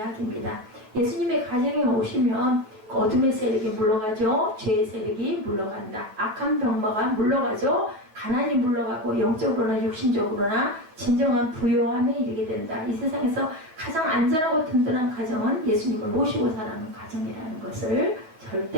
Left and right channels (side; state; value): left; late; 9.3 ms